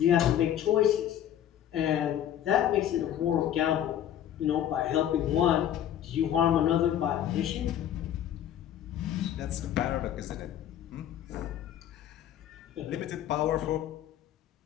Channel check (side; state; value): right; quieter; 10.8 dB